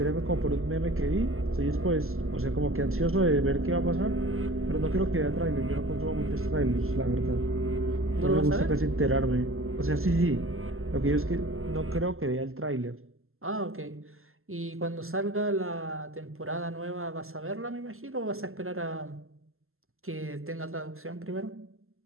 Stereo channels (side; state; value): left; late; 0.62 ms